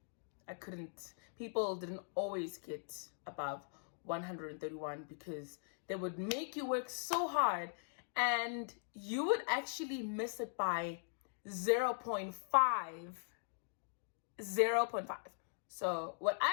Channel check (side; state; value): right; silent; digital silence